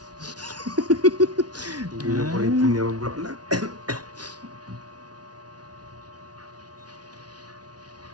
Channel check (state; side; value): late; left; 0.69 ms